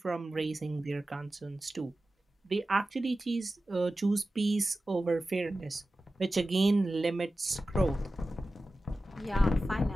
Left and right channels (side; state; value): both; normal; correlation 0.94